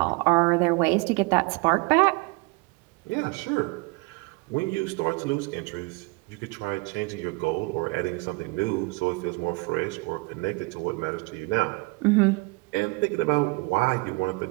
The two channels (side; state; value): left; quieter; 26.9 dB